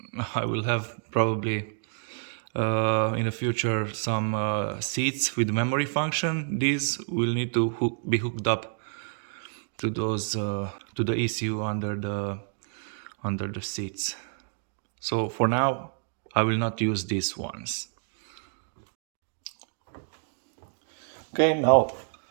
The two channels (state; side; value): silent; left; 59 dB below the other